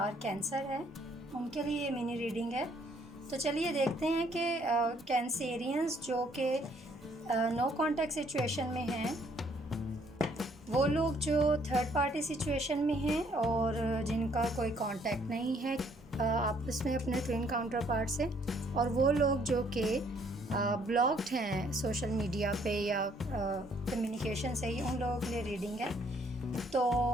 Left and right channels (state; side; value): normal; both; correlation 0.65